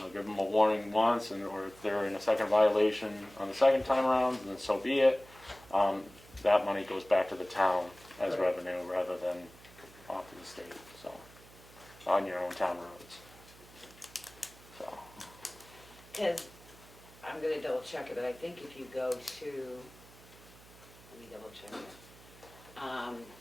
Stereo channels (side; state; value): right; noise; hum, 22 dB below the sound